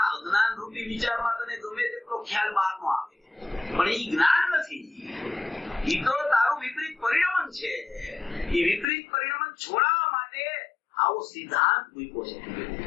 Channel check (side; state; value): right; drops out; at 8.8 s